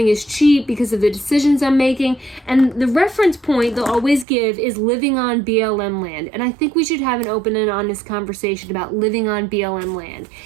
is cheap because of the decisions I'm making. And the reference point they'll always give is living on BLM land. And I think we should have an open and honest conversation about living on BLM land.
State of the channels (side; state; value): left; drops out; at 4.2 s